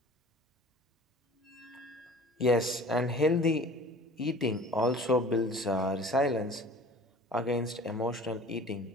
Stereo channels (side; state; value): both; normal; correlation 0.45